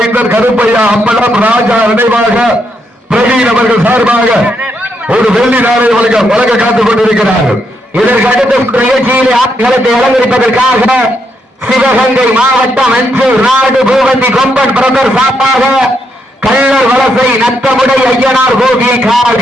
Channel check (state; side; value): normal; both; correlation 0.78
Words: கருப்பையா அம்பலம் ராஜா நினைவாக பிரவீன் அவர்கள் சார்பாக ஒரு வெள்ளி நாணய வழக்க காத்துக் கொண்டிருக்கிறார்கள். இதற்கு அடுத்த நிகழ்ச்சியிலே ஆட்களத்தை அலங்கரிப்பதற்காக சிவகங்கை மாவட்டம் அஞ்சூர் நாடு பூவந்தி கொம்பன் பிரதர் சார்பாக கள்ளர் வலசை நத்தமுடை ஐயனார் கோவில்